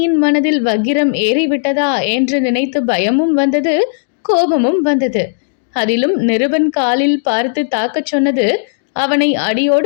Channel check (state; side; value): silent; right; digital silence